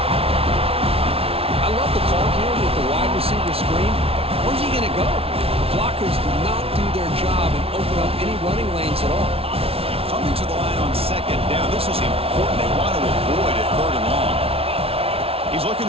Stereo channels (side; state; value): left; late; 0.28 ms